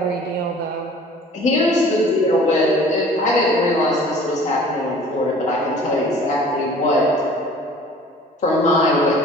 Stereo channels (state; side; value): normal; both; correlation 0.48